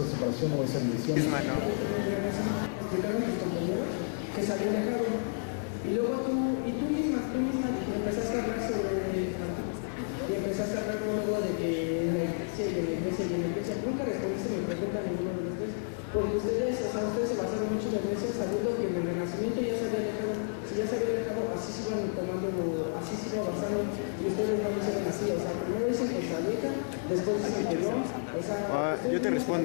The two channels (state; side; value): silent; right; digital silence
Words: separación o esa división. En el Renacimiento explicaron tus compañeros que se habían dejado, y luego tú misma empezaste a hablar sobre Martín, y empezaste a hablar luego de que en la iglesia y en la iglesia y en la iglesia. Nunca respondiste mi pregunta a ninguno de los tres, porque ustedes se basaron mucho en la iglesia, sabiendo que en el Renacimiento ya se había alejado. Si ya se había alejado, así se iban así se iba basando, y ustedes no lo hicieron así. O sea, primero dicen que se aleja, después dicen que no. O sea, yo te